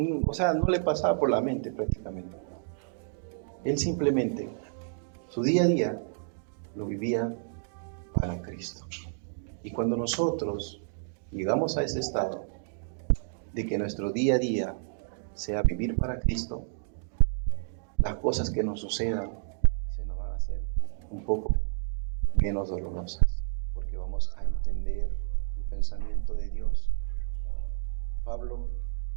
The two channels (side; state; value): left; silent; digital silence